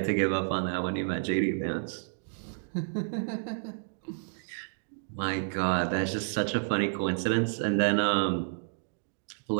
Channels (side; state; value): left; silent; digital silence